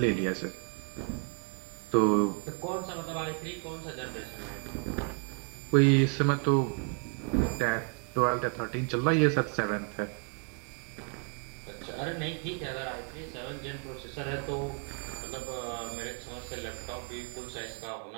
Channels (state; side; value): quieter; left; 36.3 dB